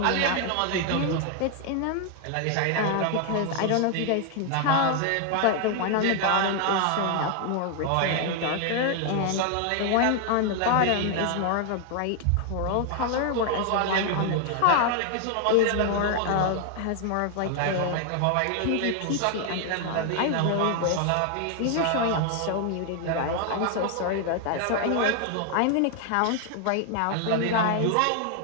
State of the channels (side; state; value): both; different; correlation 0.00